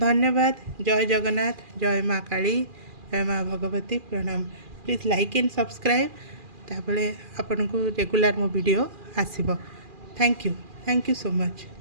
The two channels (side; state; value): left; late; 2.4 ms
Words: जय जगन्नाथ, जय माँ काली, जय माँ भगवती। प्रणाम। प्लीज लाइक एंड सब्सक्राइब तापरे आपन को रेगुलर मो वीडियो आसीबो। Thank you so much.